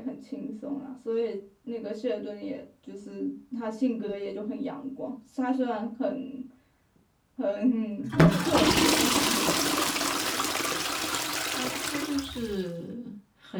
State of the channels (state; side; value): identical; both; correlation 1.00